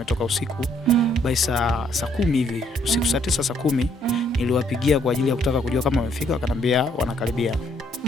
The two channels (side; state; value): both; normal; correlation 0.68